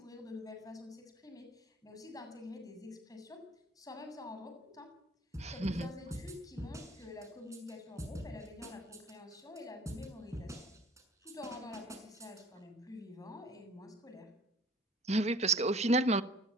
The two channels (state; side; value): normal; both; correlation 0.49